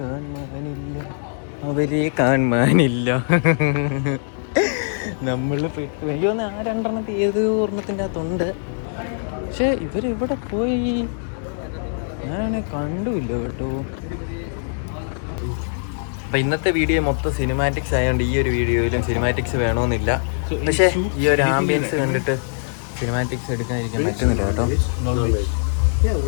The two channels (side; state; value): right; silent; digital silence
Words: അവരെ കാണാനില്ല. നമ്മൾ പെട്ടു. എനിക്ക് തോന്നുന്നു ആ 2 ഏത് ഒരെണ്ണത്തിൻ്റെ അകത്തുണ്ട്, പക്ഷെ ഇവരിവിടെ പോയി ഞാനാണെ കണ്ടുമില്ല കേട്ടോ. അപ്പം ഇന്നത്തെ വീഡിയോ മൊത്തം സിനിമാറ്റിക്സ് ആയതുകൊണ്ട് ഈ ഒരു വീഡിയോയിലും സിനിമാറ്റിക്സ് വേണമെന്നില്ല. പക്ഷേ ഈ ഒരു ആംബിയൻസ് കണ്ടിട്ട് സിനിമാറ്റിക്സ് എടുക്കാതിരിക്കാൻ പറ്റുന്നില്ല കേട്ടോ.